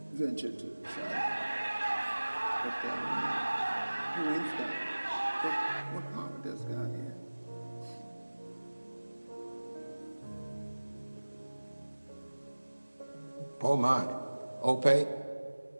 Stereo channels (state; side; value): inverted; both; correlation -1.00